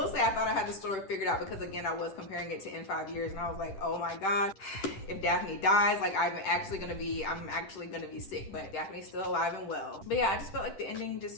say I thought I had the story figured out, because again, I was comparing it to In 5 Years and I was like, oh my gosh, if Daphne dies, like I'm actually gonna be sick, but Daphne's still alive and well. But yeah, I just felt like the ending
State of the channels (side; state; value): right; late; 10 ms